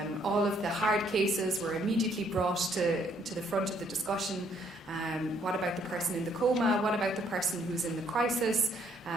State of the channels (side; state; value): both; normal; correlation 0.67